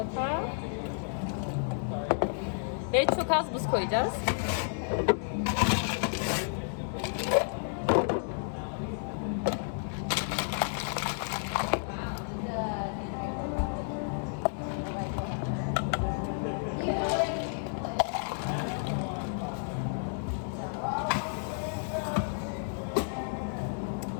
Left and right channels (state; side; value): silent; right; digital silence